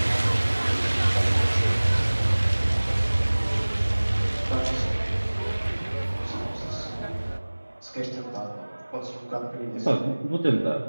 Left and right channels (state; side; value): inverted; both; correlation -1.00